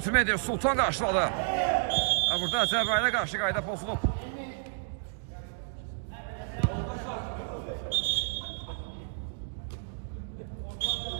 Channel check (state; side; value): silent; left; digital silence